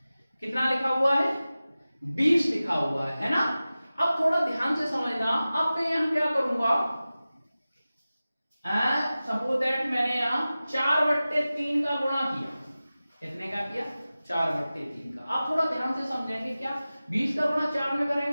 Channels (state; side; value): inverted; both; correlation -0.96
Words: कितना लिखा हुआ है, 20 लिखा हुआ है ना। अब थोड़ा ध्यान से समझना। अब मैं यहां क्या करूंगा, सपोज दैट मैंने यहां 4/3 का गुणा किया। कितने का किया, 4/3 का। आप थोड़ा ध्यान से समझेंगे क्या, 20 का गुणा 4 में